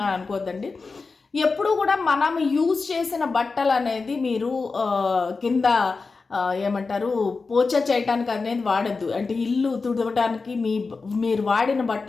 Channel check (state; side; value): quieter; right; 4.3 dB